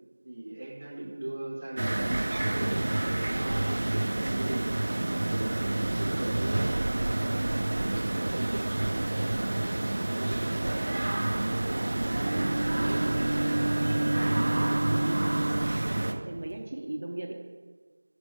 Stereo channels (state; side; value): inverted; both; correlation -1.00